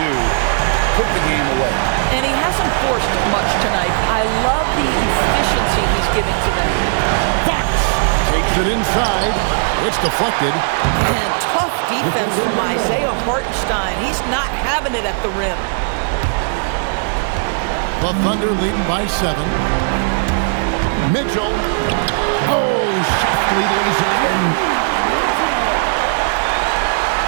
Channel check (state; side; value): silent; left; digital silence